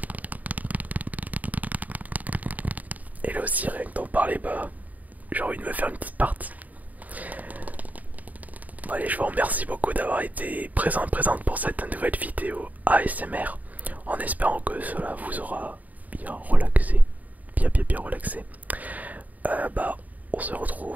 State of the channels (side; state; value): left; late; 0.076 ms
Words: Et là aussi, rien que d'en parler, bah, j'ai envie de me faire une petite partie. Bon, allez, je vous remercie beaucoup d'avoir été présente pour cette nouvelle vidéo ASMR, en espérant que cela vous aura bien relaxé, bien relaxé. Bah, on se